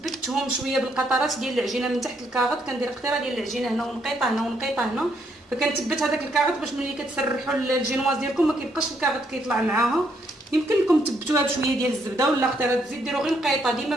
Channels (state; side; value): normal; both; correlation 0.73